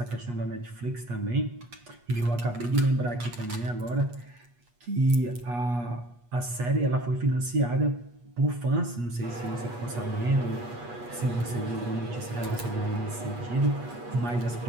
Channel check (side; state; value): left; late; 8.3 ms